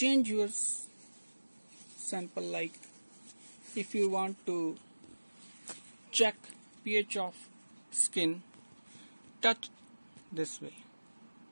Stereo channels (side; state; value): both; inverted; correlation -1.00